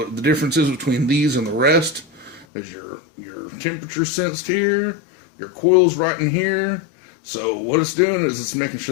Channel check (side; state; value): right; drops out; at 2.5 s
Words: the difference is between these and the rest is your temperature sensed here, your coil's right in here. So what it's doing is it's making